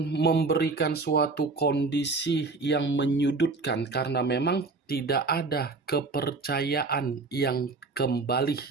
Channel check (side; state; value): left; quieter; 3.8 dB